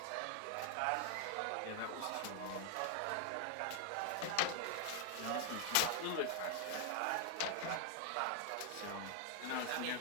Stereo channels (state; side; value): different; both; correlation 0.00